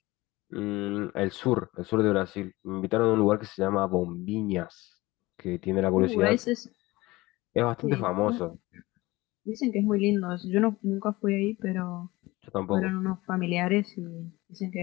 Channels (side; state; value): right; quieter; 20.4 dB